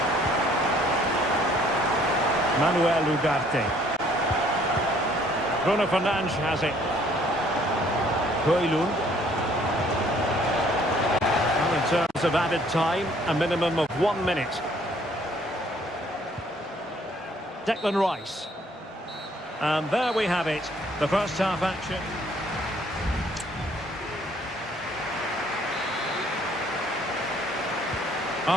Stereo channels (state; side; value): normal; both; correlation 0.61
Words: Manuel Ugarte. Bruno Fernandes has it. Højlund. Well, in terms of added time, a minimum of 1 minute. Declan Rice. And there we have it, the first half action.